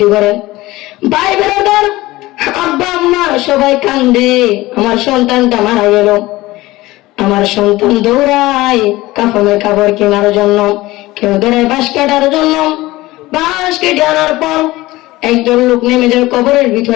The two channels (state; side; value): quieter; right; 18.8 dB